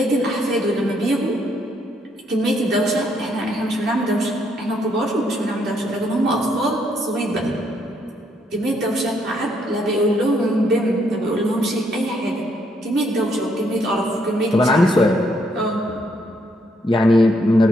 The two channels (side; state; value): both; normal; correlation 0.72